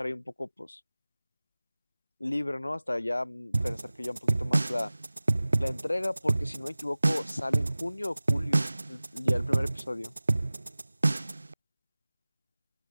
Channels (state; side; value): inverted; both; correlation -0.98